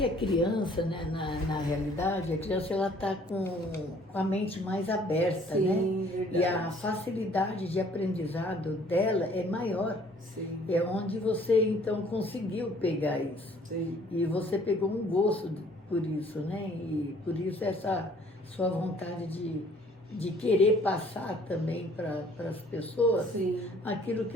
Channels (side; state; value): both; normal; correlation 0.57